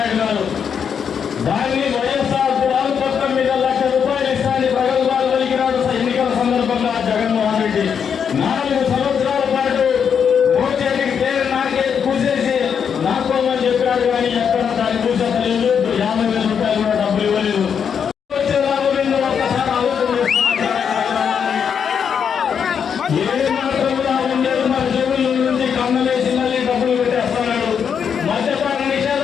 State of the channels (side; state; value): right; quieter; 7.3 dB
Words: గారు. దాన్ని వైఎస్ఆర్ గృహాల పథకం మీద ₹1,00,000 ఇస్తానని ప్రగల్భాలు పలికినాడు ఎన్నికల సందర్భంగా జగన్మోహన్ రెడ్డి. 4 సంవత్సరాల పాటు మోచేతికి పేరు నాకే కూసేసి నాకోమని చెప్పాడు. కానీ ఎక్కడ దాన్ని కూసేత లేదు. ₹50,000 కూడా డబ్బులు ఇవ్వలేదు. వచ్చే లాభం ఏందో ఒక్కసారి ఆలోచన ఏ మాత్రం కూడా ఉండేది. మన జేబుల నుంచి కన్నలేసి మళ్ళీ డబ్బులు పెట్టేస్తున్నాడు. మద్యపాన